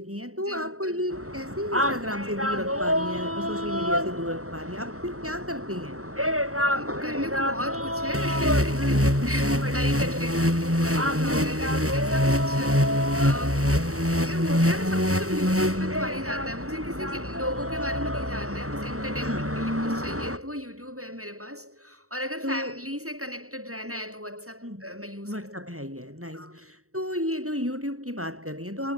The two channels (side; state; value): left; late; 0.64 ms